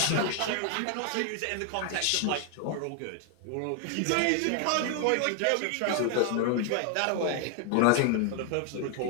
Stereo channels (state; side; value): different; both; correlation 0.00